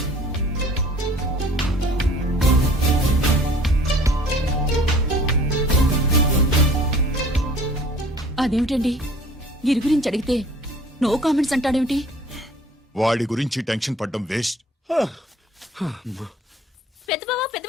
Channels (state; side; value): normal; both; correlation 0.50